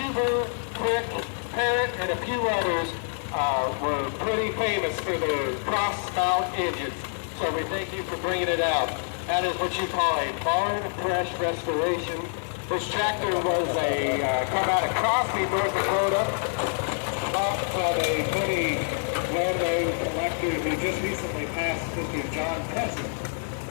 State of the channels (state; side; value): silent; right; 60 dB below the other